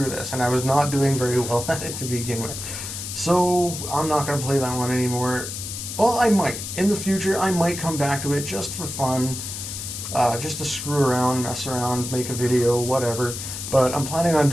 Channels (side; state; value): left; noise; hiss, 7 dB below the sound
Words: this. And I was not doing very well at it to begin with. So I'm not going to play that one anymore. Well, I might. In the future, I might come back to it just for fun. Just to screw around, mess around, make a video, whatever. But I'm planning on